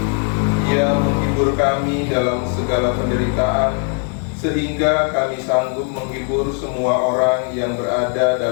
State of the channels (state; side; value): quieter; right; 39.3 dB